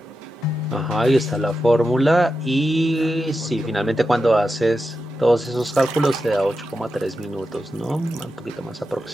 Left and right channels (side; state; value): both; normal; correlation 0.89